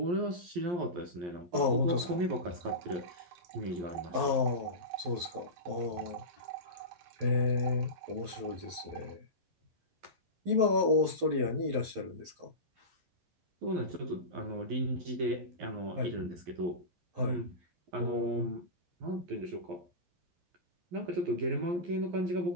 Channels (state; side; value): late; left; 11 ms